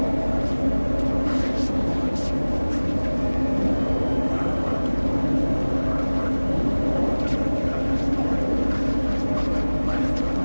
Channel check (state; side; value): inverted; both; correlation -1.00